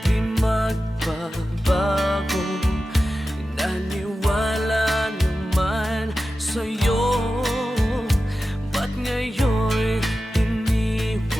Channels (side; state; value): both; normal; correlation 0.93